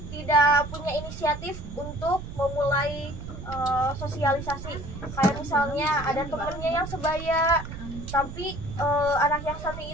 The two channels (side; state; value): right; noise; rumble, 10 dB below the sound